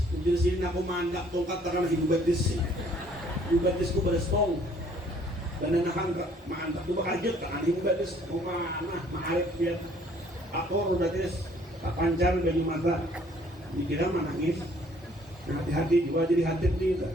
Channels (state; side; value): normal; both; correlation 0.60